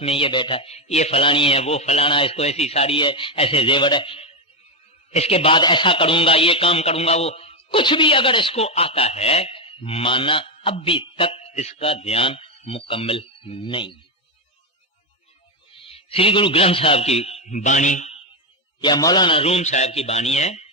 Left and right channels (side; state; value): both; normal; correlation 0.06